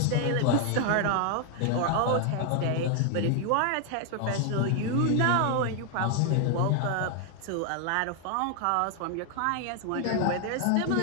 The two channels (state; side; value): different; both; correlation 0.00